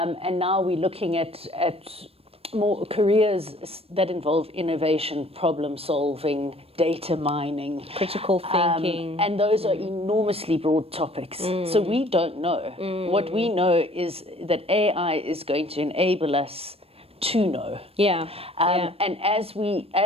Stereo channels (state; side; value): late; left; 0.28 ms